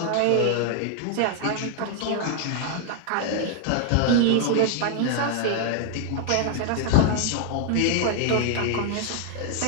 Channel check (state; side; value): different; both; correlation 0.00